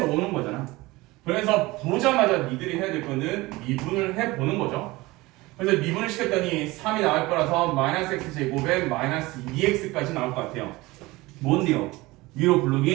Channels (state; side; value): quieter; left; 20.9 dB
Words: 오는 거잖아. 그래서 보자마자 니들이 해야 될 거는 미분을 해보는 거죠. 그래서 미분을 시켰더니 3이 나올 거라서 마이너스 x 제곱에 마이너스 2x까지 나올 것 같아요. 뭔데요? 위로